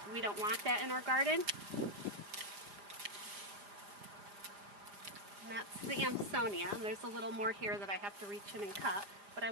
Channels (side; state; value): left; late; 4.9 ms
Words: we don't want that in our garden. And that's the Amsonia. And there's a little more here that I have to reach in and cut, but I